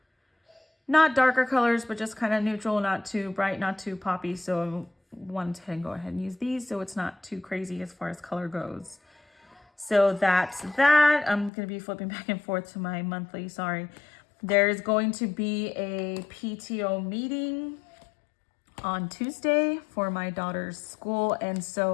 not darker colors, but just kind of neutral, not too bright, not too poppy. So I wanted to go ahead and use these so it's not too crazy as far as color goes. So that's that. I'm going to be flipping back and forth to my monthly, sorry. There's going to be a PTO meeting on Tuesday for my daughter's school. And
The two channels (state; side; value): drops out; right; at 11.5 s